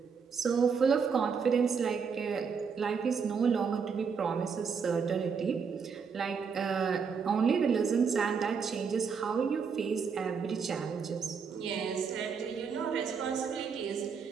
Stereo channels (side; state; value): left; quieter; 6.0 dB